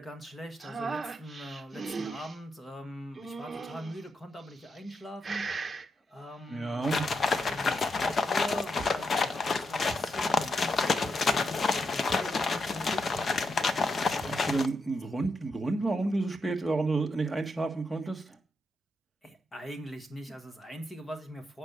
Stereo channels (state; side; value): normal; both; correlation 0.83